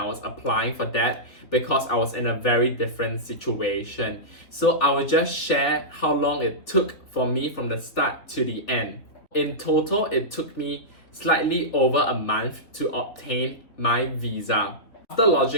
was applying for that because I was in a very different situation. So I will just share how long it took for me from the start to the end. In total, it took me slightly over a month to obtain my visa. After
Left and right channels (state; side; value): late; right; 3.2 ms